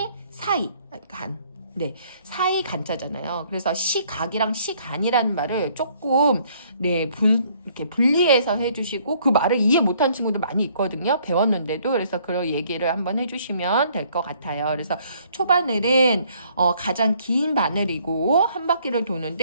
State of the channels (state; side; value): inverted; both; correlation -0.63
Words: 사이 간. 네, 사이 간자잖아요. 그래서 시각이랑 시간이라는 말을 조금 이렇게 분리해서 해주시고 그 말을 이해 못한 친구도 많이 있거든요. 배웠는데도. 그래서 그런 얘기를 한번 해주시면 될 것 같아요. 그래서 초바늘은 가장 긴 바늘이고 한 바퀴를